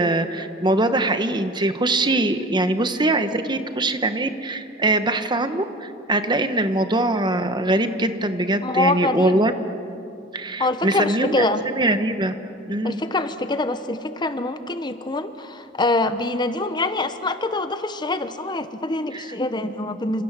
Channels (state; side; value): normal; both; correlation 0.39